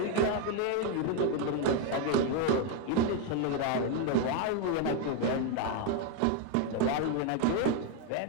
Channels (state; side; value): different; both; correlation 0.01